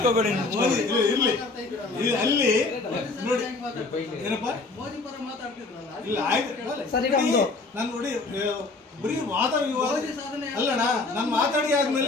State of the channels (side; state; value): right; quieter; 3.6 dB